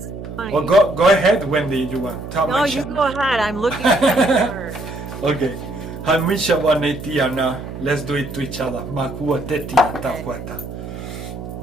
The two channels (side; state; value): right; noise; hum, 10 dB below the sound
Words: funny. Well, go ahead, Wendy. You want? No, you go ahead. I'm looking at the card. Okay. Hamisha wanetiana. Let's do it to each other. Makua tetia takwata.